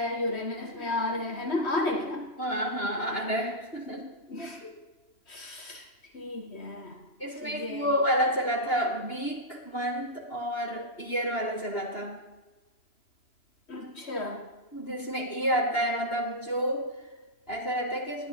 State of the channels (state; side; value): late; right; 2.9 ms